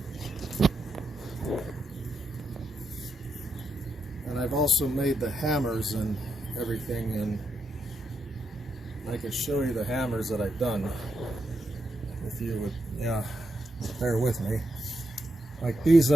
I've also made the hammers and everything, and I can show you the hammers that I've done if you would bear with me. Like these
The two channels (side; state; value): both; normal; correlation 0.83